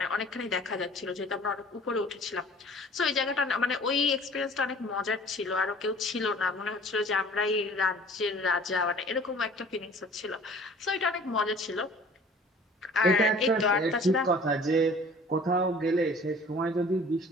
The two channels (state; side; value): normal; both; correlation 0.49